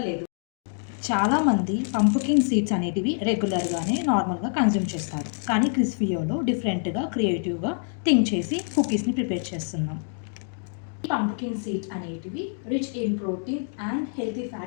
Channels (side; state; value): right; silent; 61 dB below the other